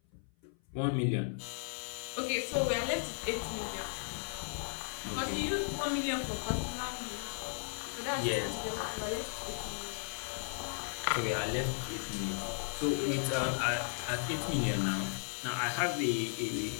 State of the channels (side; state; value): right; silent; 54 dB below the other